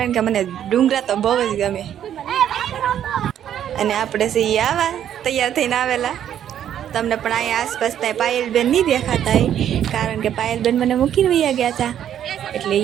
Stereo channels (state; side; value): quieter; left; 10.2 dB